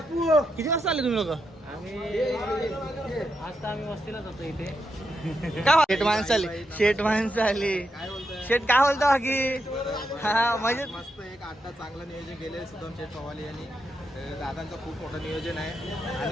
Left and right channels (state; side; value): normal; both; correlation 0.83